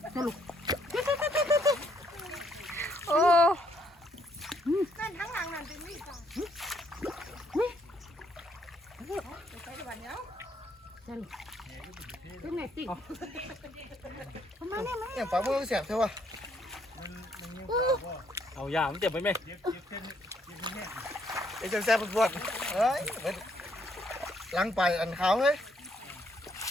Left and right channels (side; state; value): both; normal; correlation 0.70